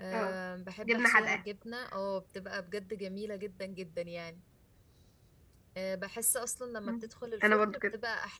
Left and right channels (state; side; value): identical; both; correlation 1.00